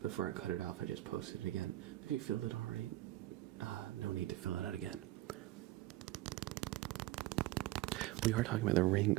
Before I cut it off, I just posted it again. If you filled it already, no need to fill it out again. We are talking about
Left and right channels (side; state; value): left; quieter; 16.1 dB